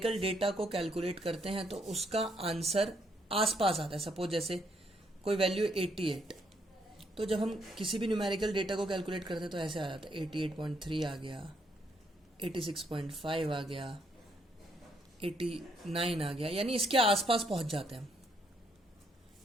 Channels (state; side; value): normal; both; correlation 0.72